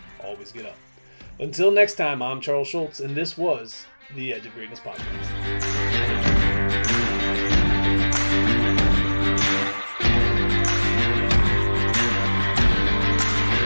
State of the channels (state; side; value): inverted; both; correlation -1.00